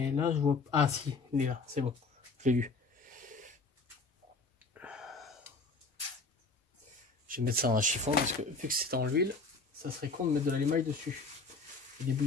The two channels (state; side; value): quieter; right; 3.9 dB